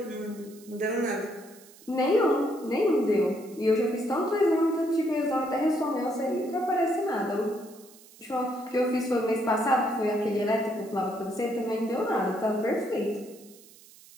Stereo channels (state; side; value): noise; right; hiss, 23 dB below the sound